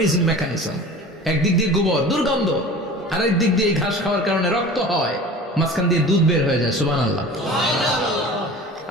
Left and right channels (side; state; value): both; normal; correlation 0.39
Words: mechanism. একদিক দিয়ে গোবর দুর্গন্ধ, আর একদিক দিয়ে ঘাস খাওয়ার কারণে রক্ত হয়, মাঝখান দিয়ে দুধ বের হয়ে যায়, সুবহানাল্লাহ।